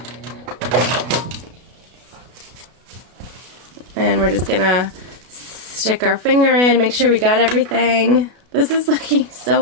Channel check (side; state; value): left; late; 32 ms